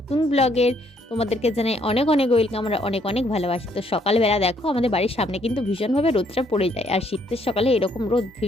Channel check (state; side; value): normal; both; correlation 0.69